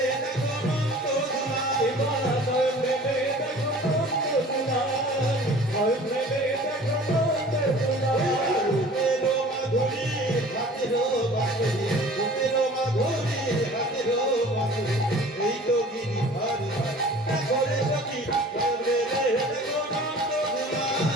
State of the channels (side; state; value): both; normal; correlation 0.46